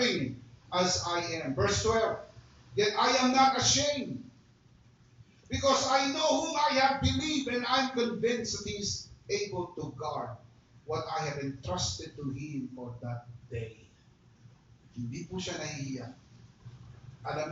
as I am. Verse 12, yet I am not ashamed, because I know whom I have believed, and I am convinced that He is able to guard what I have entrusted to Him for that day. Hindi po siya nahihiya. Alam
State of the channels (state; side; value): identical; both; correlation 1.00